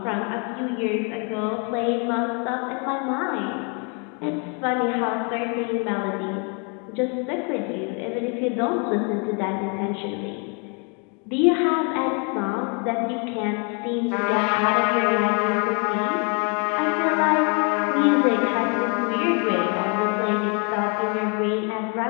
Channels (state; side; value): quieter; right; 35.9 dB